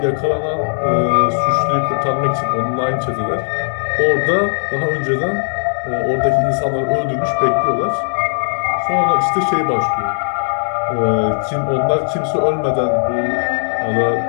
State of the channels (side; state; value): right; silent; digital silence